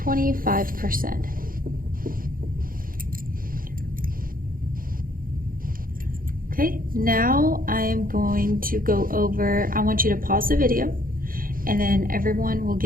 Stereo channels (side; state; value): left; late; 0.41 ms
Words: Okay, now I am going to go over, I want you to pause the video and then everyone will